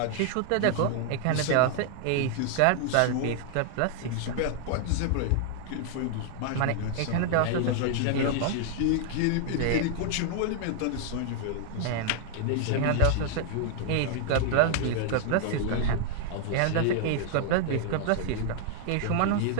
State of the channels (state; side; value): different; both; correlation 0.00